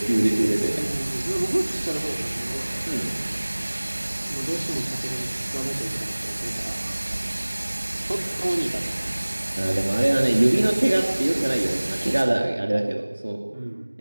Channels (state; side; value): inverted; both; correlation -1.00